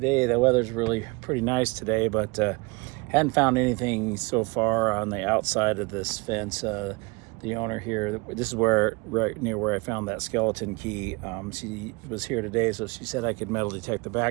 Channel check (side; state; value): left; quieter; 27.4 dB